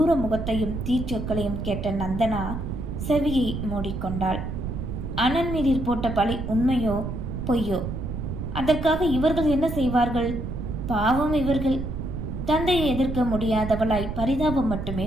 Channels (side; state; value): right; noise; rumble, 5 dB below the sound